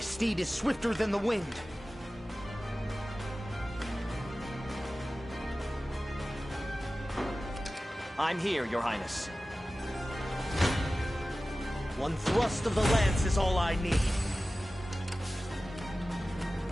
is swifter than the wind. I'm here, Your Highness. One thrust of the lance is all I need.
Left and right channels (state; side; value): normal; both; correlation 0.96